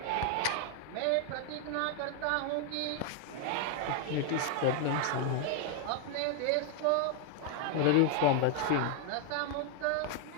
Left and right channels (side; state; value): both; different; correlation 0.01